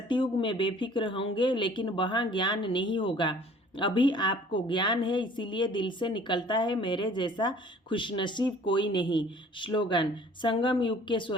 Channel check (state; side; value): normal; both; correlation 0.52